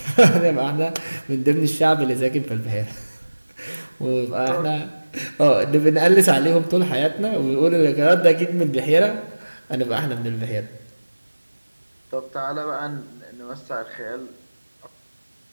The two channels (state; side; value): inverted; both; correlation -1.00